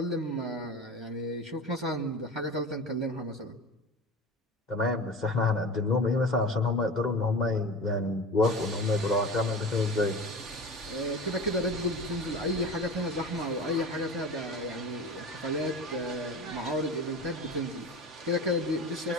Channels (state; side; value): normal; both; correlation 0.32